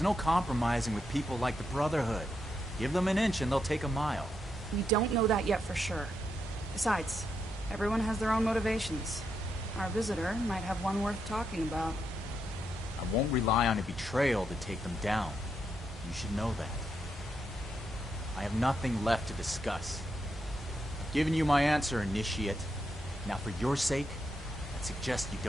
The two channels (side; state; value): both; normal; correlation 0.81